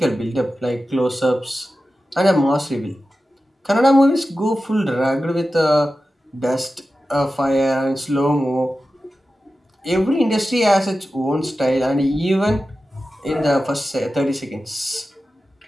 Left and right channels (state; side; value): normal; both; correlation 0.93